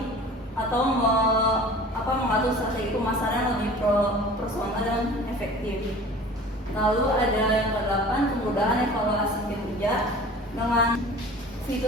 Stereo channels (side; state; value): both; normal; correlation 0.43